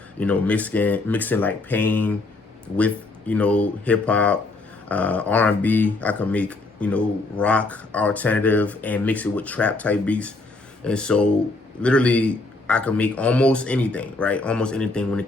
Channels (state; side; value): quieter; right; 3.2 dB